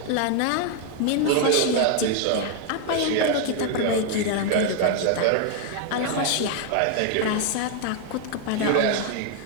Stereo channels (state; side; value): different; both; correlation 0.00